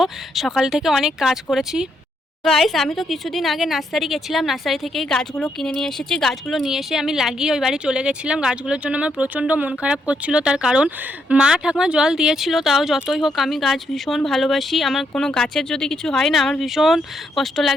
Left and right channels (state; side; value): normal; both; correlation 0.77